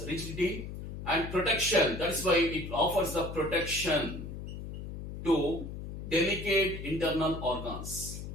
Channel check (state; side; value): noise; left; hum, 8 dB below the sound